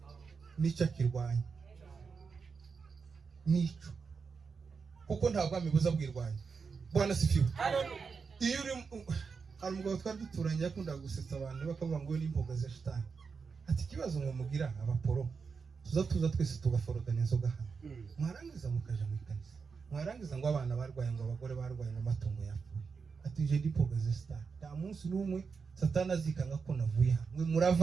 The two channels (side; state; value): left; quieter; 5.3 dB